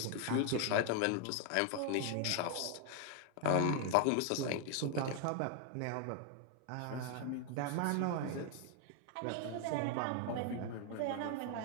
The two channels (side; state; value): both; different; correlation 0.01